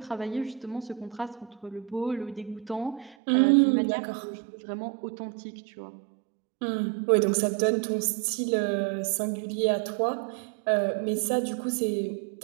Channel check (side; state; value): left; drops out; at 3.2 s